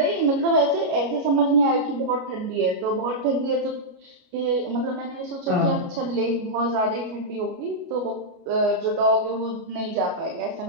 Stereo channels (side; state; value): left; late; 29 ms